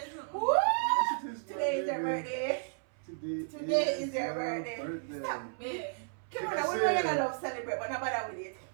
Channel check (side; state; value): left; silent; 56 dB below the other